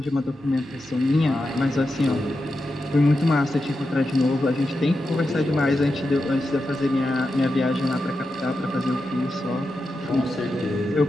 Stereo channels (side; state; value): both; normal; correlation 0.89